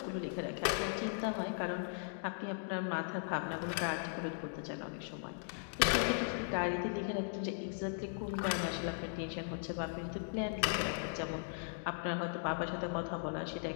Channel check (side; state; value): right; silent; digital silence